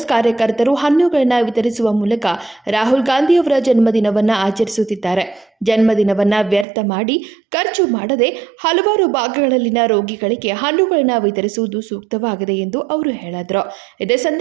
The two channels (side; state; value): left; drops out; at 6.7 s